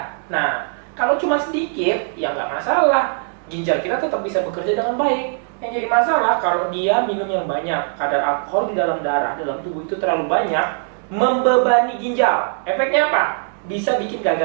Nah, kalau cuma sedikit, ya nggak masalah. Ginjal kita tetap bisa bekerja dengan baik. Yang jadi masalah kalau dia minum yang banyak, kadar alkohol di dalam darah, dalam tubuh itu terlalu banyak, membebani ginjal. Efeknya apa? Bisa bikin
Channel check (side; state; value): left; silent; digital silence